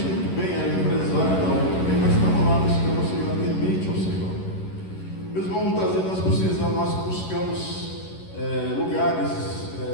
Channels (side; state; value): right; late; 11 ms